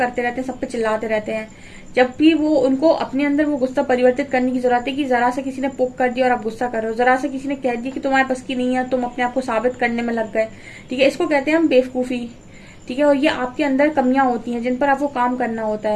रहते हैं, सब पे चिल्लाते रहते हैं। जब भी वो उनको अपने अंदर वो गुस्सा परिवर्तित करने की जरूरत है कि जरा सा किसी ने पोक कर दिया और आप गुस्सा कर रहे हो, जरा सा किसी ने कह दिया कि तुम्हारे पास की नहीं है, तुम अपने आप को साबित करने में लग गए। ठीक है, इसको कहते हैं हम बेवकूफी। ठीक है, और ये आपके अंदर कमियां होती हैं जिन पर आपको काम करना होता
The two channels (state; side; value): identical; both; correlation 1.00